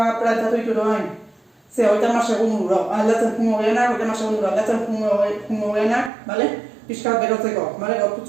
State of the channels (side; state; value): left; drops out; at 6.1 s